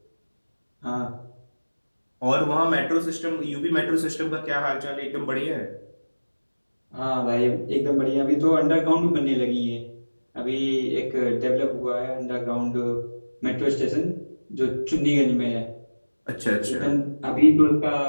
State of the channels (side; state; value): both; inverted; correlation -1.00